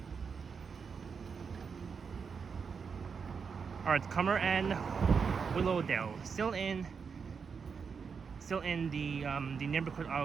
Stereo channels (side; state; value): left; quieter; 5.9 dB